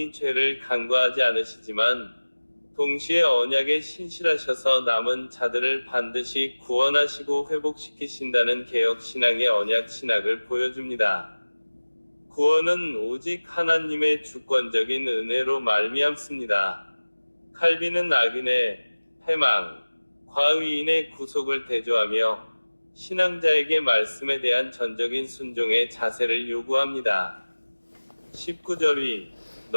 죄를 간과하지 않으시지만 동시에 언약에 신실하셔서 남은 자들을 반드시 구원하시고 회복시키신다는 개혁신앙의 언약신학을 보여줍니다. 구원은 오직 하나님의 주권적인 은혜로 말미암습니다. 칼빈은 악인의 패망, 과의인의 구속을 대조하며 신앙자에게 말씀에 대한 전적인 순종의 자세를 요구합니다. 19절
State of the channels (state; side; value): inverted; both; correlation -1.00